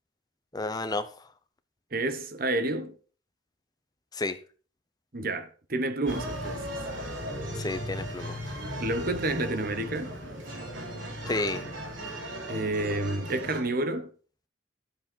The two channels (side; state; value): both; normal; correlation 0.33